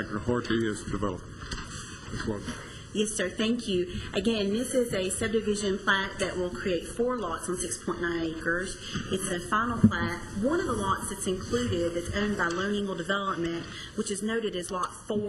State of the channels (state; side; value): identical; both; correlation 1.00